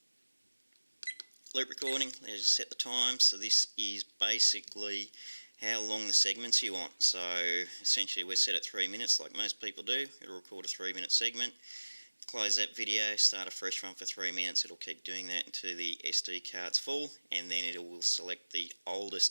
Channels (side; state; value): both; inverted; correlation -1.00